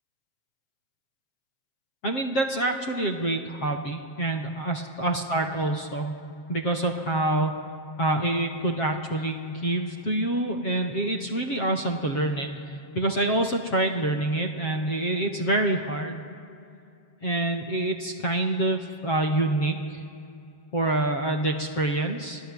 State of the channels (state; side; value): late; right; 7.5 ms